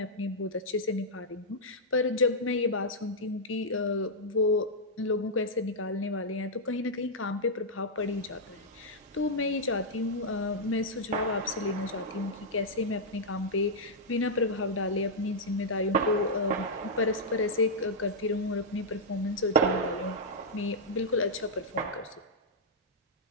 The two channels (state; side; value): normal; both; correlation -0.06